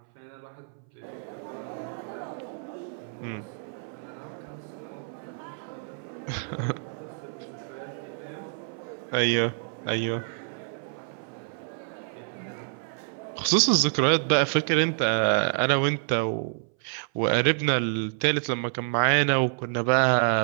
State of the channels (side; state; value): left; silent; 59 dB below the other